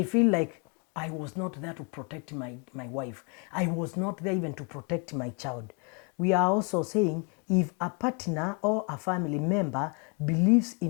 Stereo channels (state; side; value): quieter; right; 34.7 dB